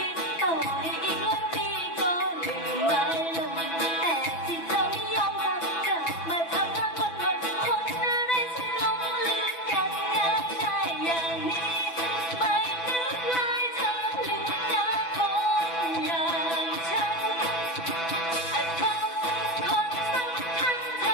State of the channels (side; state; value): right; late; 6.0 ms